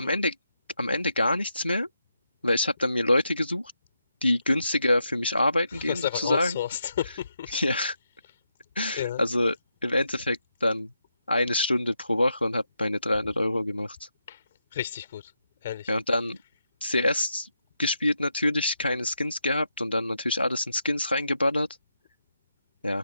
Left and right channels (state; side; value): inverted; both; correlation -0.83